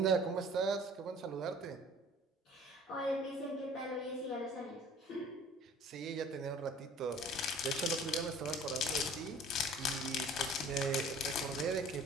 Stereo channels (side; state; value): both; normal; correlation 0.49